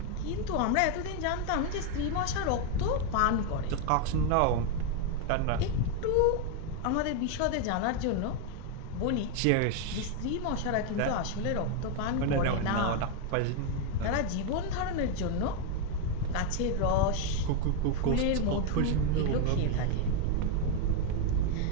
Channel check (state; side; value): different; both; correlation 0.01